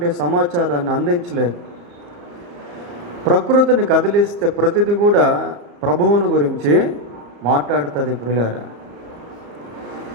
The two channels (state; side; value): late; left; 35 ms